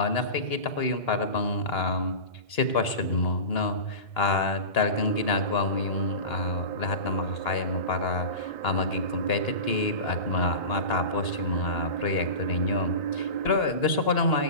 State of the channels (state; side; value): late; right; 2.8 ms